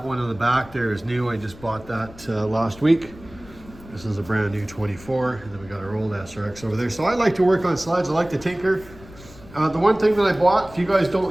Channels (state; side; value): noise; left; rumble, 20 dB below the sound